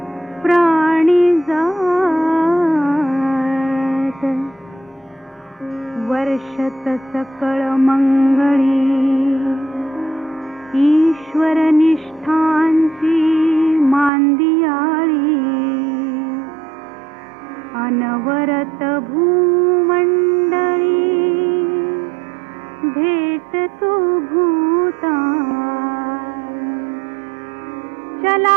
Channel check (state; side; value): drops out; left; at 14.1 s